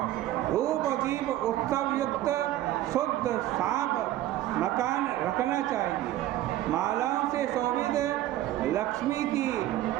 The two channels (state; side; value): quieter; left; 14.1 dB